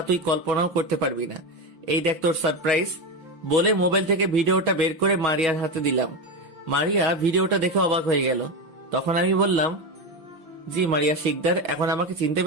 তুই কল্পনাও করতে পারবি না। এই দেখ তোর সারপ্রাইজ। বলে মোবাইল থেকে ভিডিওটা বের করে মারিয়ার হাতে দিলাম। মারিয়া ভিডিওটা দেখে অবাক হয়ে গেল। তখন আমি বললাম, জি মারিয়া শিকদার, এখন আমাকে চিনতে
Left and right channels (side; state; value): left; late; 5.9 ms